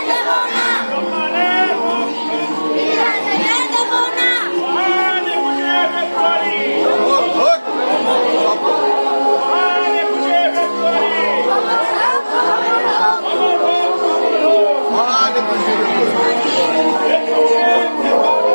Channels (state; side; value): inverted; both; correlation -1.00